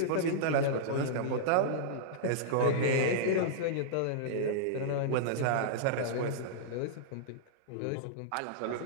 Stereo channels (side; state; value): both; different; correlation -0.02